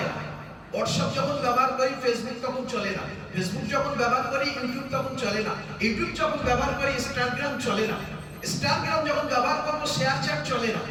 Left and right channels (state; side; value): identical; both; correlation 1.00